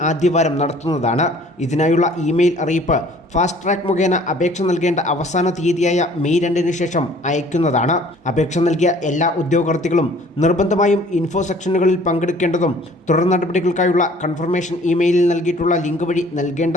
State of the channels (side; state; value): both; normal; correlation 0.54